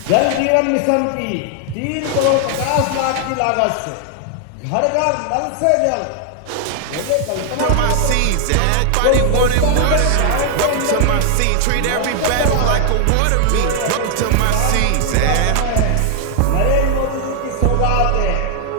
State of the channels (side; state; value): both; different; correlation 0.00